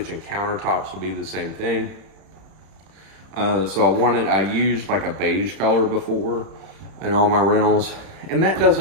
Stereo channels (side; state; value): left; late; 31 ms